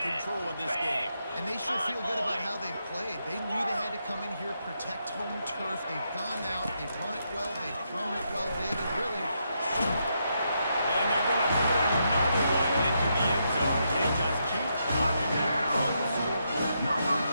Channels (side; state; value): both; inverted; correlation -0.80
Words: control of this game. And they should feel good about how they've played. They knew they had to come in here, protect home turf. They've gone out, they've run it well, they've thrown it well, David. Really, And they're going to put another one into the end zone as they just keep knocking down on the scoreboard. Number